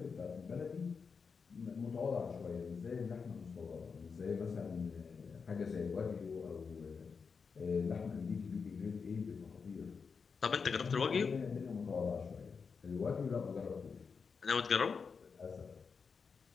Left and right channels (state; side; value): quieter; right; 5.5 dB